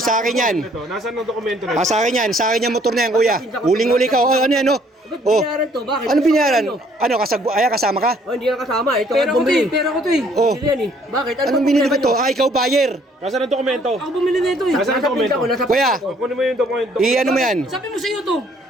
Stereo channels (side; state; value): both; normal; correlation 0.62